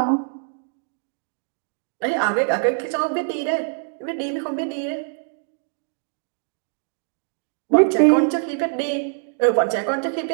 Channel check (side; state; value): left; silent; digital silence